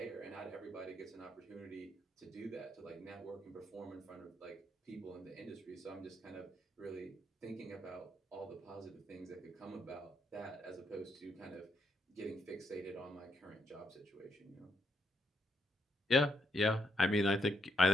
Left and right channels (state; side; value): normal; both; correlation 0.77